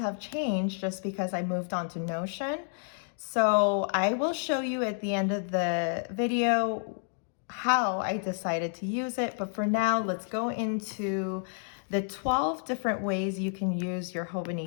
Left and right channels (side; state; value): right; silent; 58 dB below the other